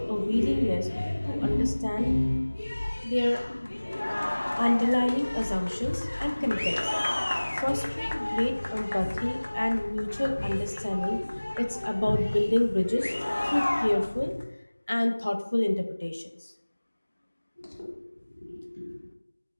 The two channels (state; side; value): inverted; both; correlation -1.00